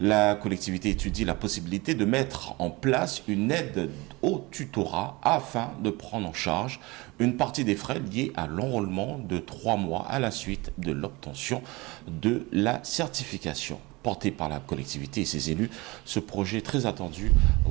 La collectivité étudie la possibilité de mettre en place une aide au tutorat afin de prendre en charge une partie des frais liés à l'enrôlement de 3 mois à la suite de l'obtention de la certification. Porté par la collectivité et ses élus, ce projet très attendu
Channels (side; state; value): left; quieter; 23.6 dB